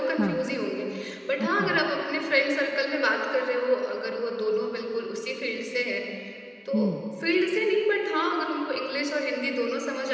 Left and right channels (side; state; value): both; identical; correlation 1.00